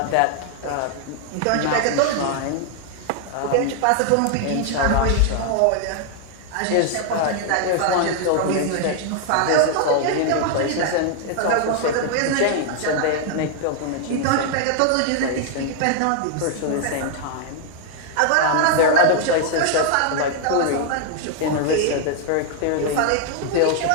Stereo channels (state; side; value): different; both; correlation 0.00